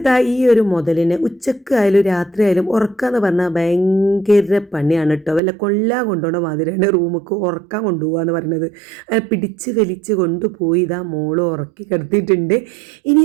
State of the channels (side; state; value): left; drops out; at 5.4 s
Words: ഈ ഒരു മുതലിനെ ഉച്ചക്കായാലും രാത്രിയായാലും ഉറക്കാന്ന് പറഞ്ഞാൽ ഭയങ്കര പണിയാണ് കേട്ടോ. വല്ല കൊല്ലാൻ കൊണ്ടുപോകണ മാതിരിയാണ് റൂമിക്ക് ഉറക്കാൻ കൊണ്ടുപോകുക എന്ന് പറയുന്നത്. പിടിച്ച് വലിച്ച് കൊണ്ടുപോയി ഇതാ മോള് ഉറക്കി കിടത്തിയിട്ടുണ്ട്.